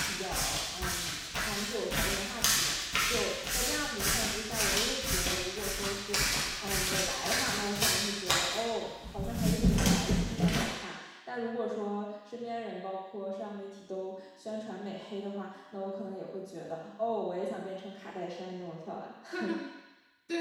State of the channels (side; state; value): both; identical; correlation 1.00